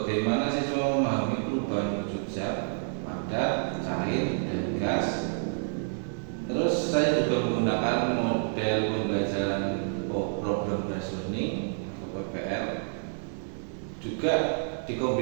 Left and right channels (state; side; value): silent; left; digital silence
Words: siswa memahami perubahan wujud zat, padat, cair, dan gas. Terus saya juga menggunakan model pembelajaran problem based learning atau PBL, juga